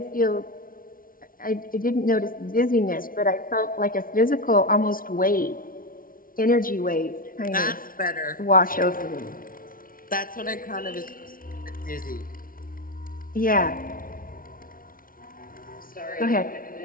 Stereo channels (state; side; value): late; right; 0.41 ms